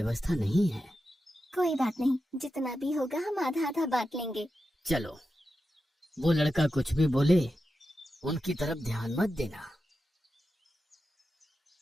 नहीं है। कोई बात नहीं, जितना भी होगा हम आधा आधा बांट लेंगे। चलो, वो लड़का कुछ भी बोले उनकी तरफ ध्यान मत देना।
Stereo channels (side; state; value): both; normal; correlation 0.90